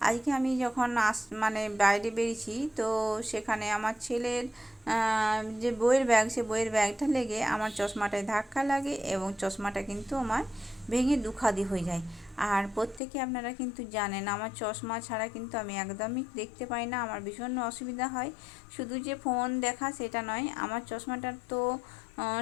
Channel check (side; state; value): right; drops out; at 13.0 s